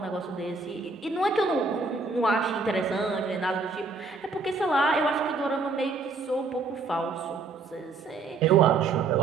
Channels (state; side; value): quieter; left; 4.1 dB